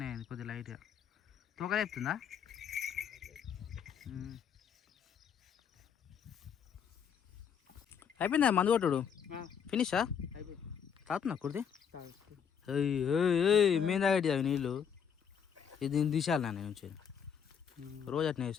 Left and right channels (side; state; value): right; quieter; 7.6 dB